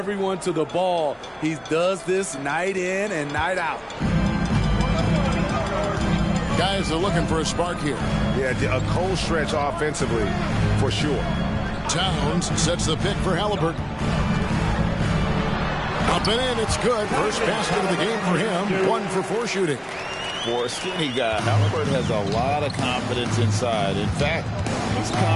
to the ball. He does this night in and night out. Guys are looking for a spark here. Yeah, a cold stretch offensively for sure. Towns sets the pick for Halliburton. Up and in, it's good. First basket of the game for him. 1 for 4 shooting. For a skinny guy, Halliburton has a lot of confidence inside. In fact, he's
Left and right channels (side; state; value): both; identical; correlation 1.00